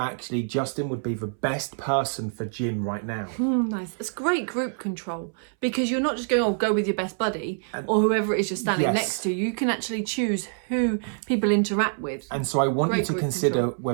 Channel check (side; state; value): left; silent; 61 dB below the other